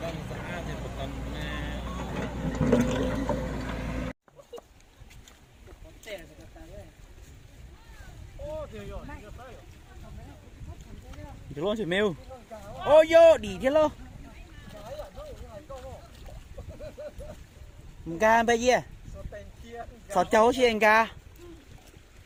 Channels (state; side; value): identical; both; correlation 1.00